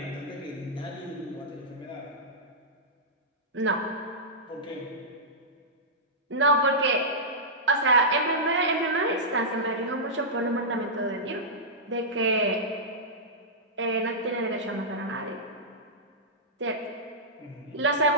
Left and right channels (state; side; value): normal; both; correlation -0.14